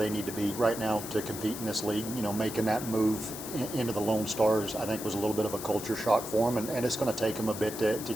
need to be right now to compete in this league. You know, making that move into the Lone Stars, I think, was a little bit of a culture shock for them, and it's going to take them a bit to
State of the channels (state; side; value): noise; left; hiss, 10 dB below the sound